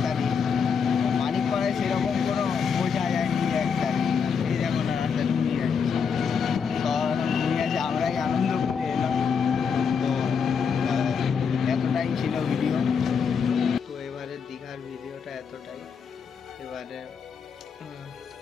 তারিখ মানিকপাড়ায় সেরকম কোনো বোঝা যায়নি। 1 তারিখ এই দেখো না, রাস্তা ঘুমিয়ে যাচ্ছে। তো ঘুমিয়ে আছে, আমরাই আনন্দ করে এলাম। তো এতটাই ছিল ভিডিও। তো এবারে দীঘার ভিডিওটা এতটাই। এবারে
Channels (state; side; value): quieter; right; 6.4 dB